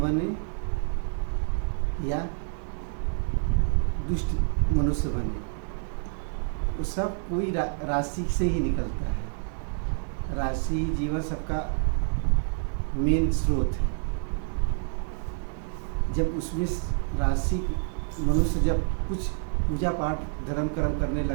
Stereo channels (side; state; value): left; silent; 57 dB below the other